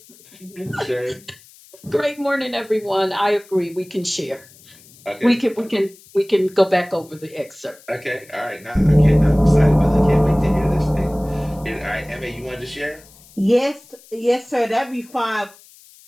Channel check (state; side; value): noise; left; hiss, 25 dB below the sound